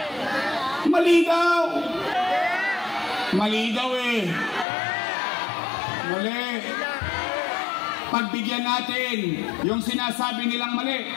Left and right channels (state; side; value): drops out; right; at 4.7 s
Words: Mali daw. Mali daw eh. Mali. Pagbigyan natin yung sinasabi nilang mali.